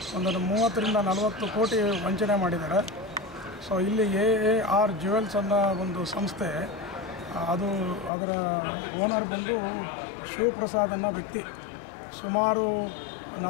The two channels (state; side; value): drops out; right; at 8.1 s